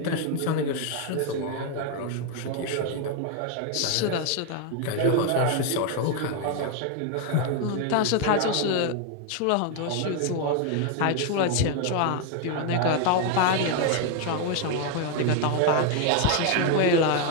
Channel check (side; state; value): both; different; correlation 0.01